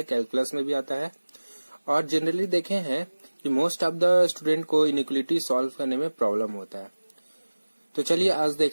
कैलकुलस में भी आता है और जनरली देखे हैं कि मोस्ट ऑफ द स्टूडेंट को इनइक्वालिटी सॉल्व करने में प्रॉब्लम होता है। तो चलिए आज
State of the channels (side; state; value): both; inverted; correlation -1.00